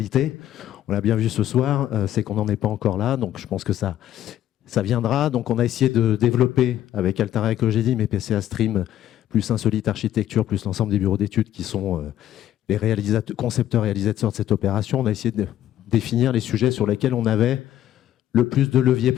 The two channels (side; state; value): right; quieter; 12.0 dB